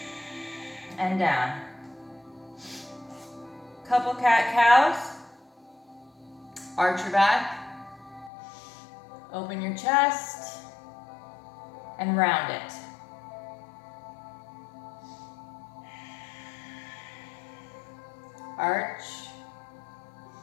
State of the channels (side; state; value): right; drops out; at 8.3 s